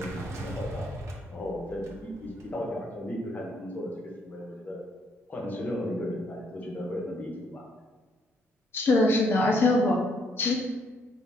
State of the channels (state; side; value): normal; both; correlation 0.71